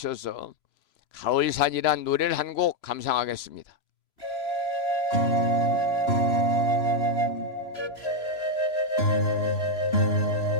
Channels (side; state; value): right; late; 3.0 ms